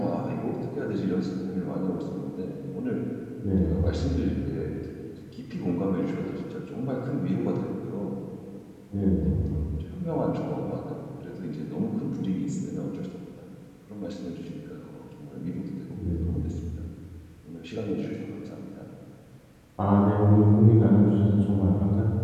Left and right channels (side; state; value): both; identical; correlation 1.00